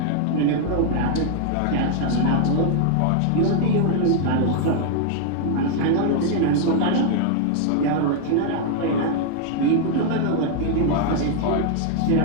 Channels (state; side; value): different; both; correlation 0.00